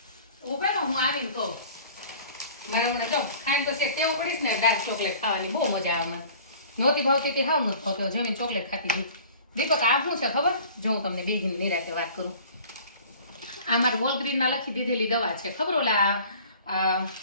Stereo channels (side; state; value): both; inverted; correlation -0.47